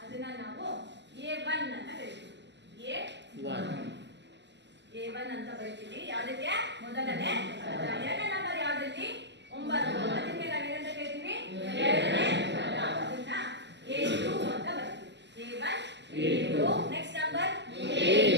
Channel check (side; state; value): left; late; 0.51 ms